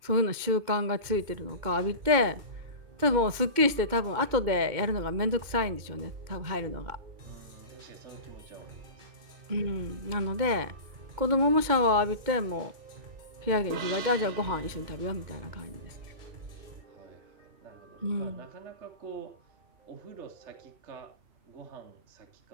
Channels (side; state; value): left; late; 2.2 ms